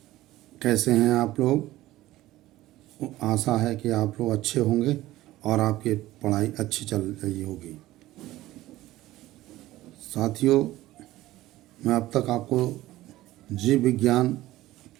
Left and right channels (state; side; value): quieter; left; 16.3 dB